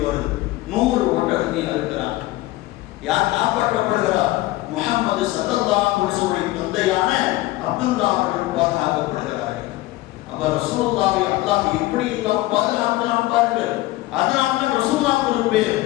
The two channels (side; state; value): right; quieter; 18.1 dB